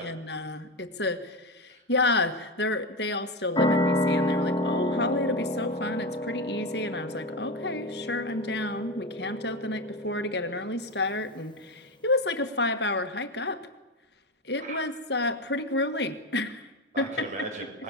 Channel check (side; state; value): both; normal; correlation 0.17